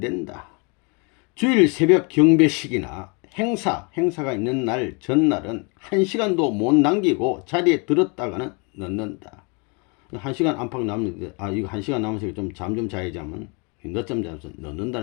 주일 새벽 경배식이나 행사가 있는 날 전날은 1시간도 못 남기고 자리에 들었다가는 넣는다. 1시간 안팎 남는데 이거 1시간 남아서 좀 잠 좀 자야지 하면 늦잠 자면서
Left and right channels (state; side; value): quieter; right; 32.7 dB